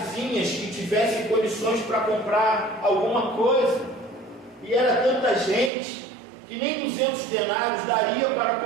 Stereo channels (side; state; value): left; drops out; at 5.7 s